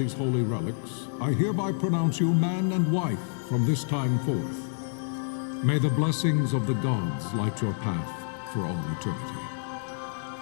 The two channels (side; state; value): right; silent; 59 dB below the other